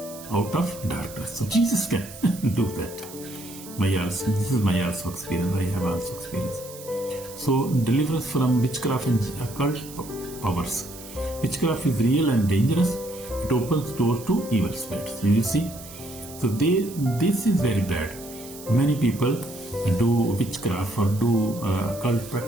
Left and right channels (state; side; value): noise; right; hiss, 16 dB below the sound